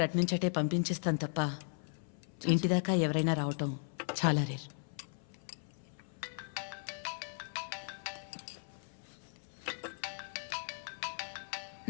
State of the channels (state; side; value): silent; right; 53 dB below the other